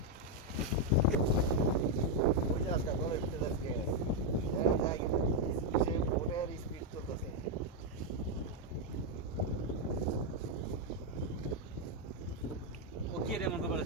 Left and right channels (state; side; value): normal; both; correlation 0.02